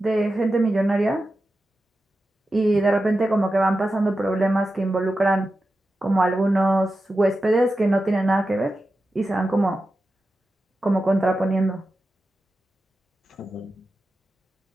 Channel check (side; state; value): both; normal; correlation 0.91